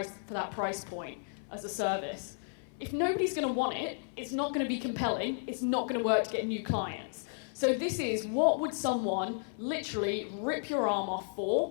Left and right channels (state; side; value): silent; right; 56 dB below the other